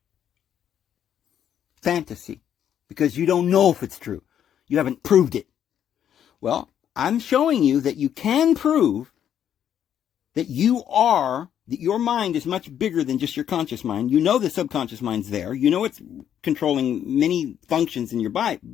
fantasy, because you don't know if it's true. You haven't proved it. Well, I'm showing you that you can prove that that your mind is much bigger than just your conscious mind. You know the subconscious mind's there. You know it's controlling many functions in your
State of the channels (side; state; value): right; quieter; 9.6 dB